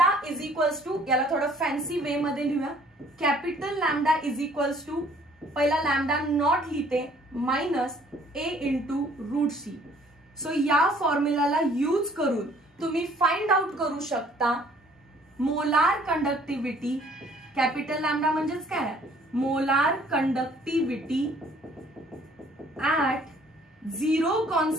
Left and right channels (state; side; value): normal; both; correlation 0.59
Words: इज इक्वल्स टू, याला थोडं फॅन्सी वे मध्ये लिहूया, capital lambda is equals to, पहिला लॅम्डा नॉट लिहिते, minus a into root C. So या फॉर्म्युलाला यूज करून तुम्ही फाइंड आउट करू शकता मोलार कंडक्टिव्हिटी. कॅपिटल लॅम्डा म्हणजेच काय, molar conductivity at zero